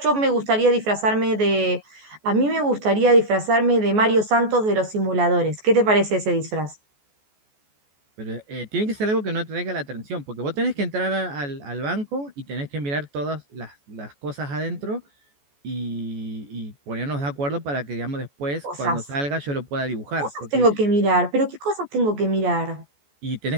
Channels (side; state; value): left; late; 14 ms